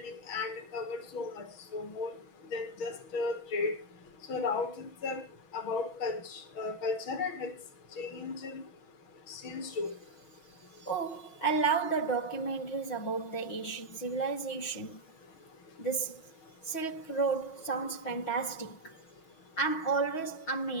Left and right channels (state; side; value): late; right; 6.2 ms